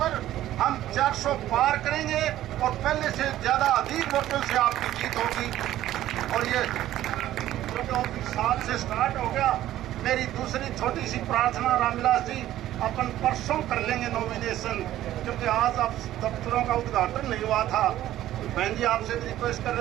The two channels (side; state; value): left; quieter; 13.6 dB